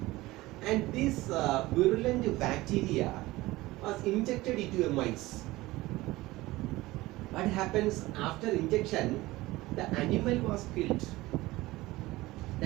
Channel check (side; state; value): left; quieter; 19.0 dB